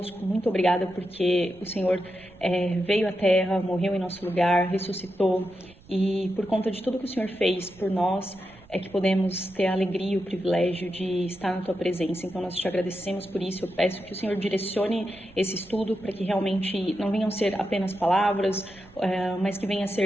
Muito obrigada porque o Senhor veio à Terra, morreu em nosso lugar, ressuscitou e por conta de tudo que o Senhor fez por nós, é que podemos ter a alegria e o privilégio de estar na Tua presença. Então, nós te agradecemos por isso. Eu peço que o Senhor direcione esse estudo para que realmente não venham ser apenas palavras, mas que venha a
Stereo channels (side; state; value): right; noise; rumble, 25 dB below the sound